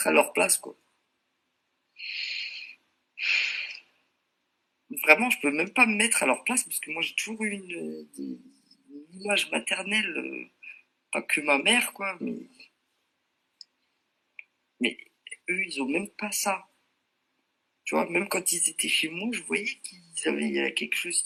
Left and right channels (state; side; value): identical; both; correlation 1.00